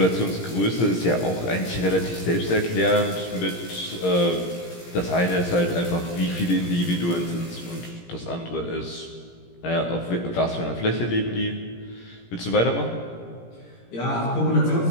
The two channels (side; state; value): right; late; 17 ms